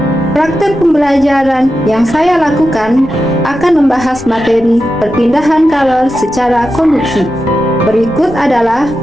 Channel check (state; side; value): noise; left; rumble, 21 dB below the sound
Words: Praktek pembelajaran yang saya lakukan akan membahas materi perpindahan kalor secara konduksi. Berikut adalah